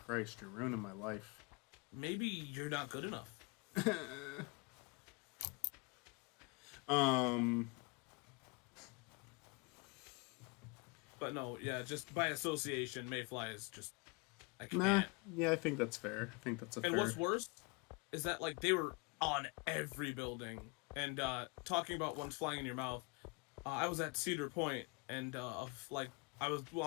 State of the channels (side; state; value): right; quieter; 29.7 dB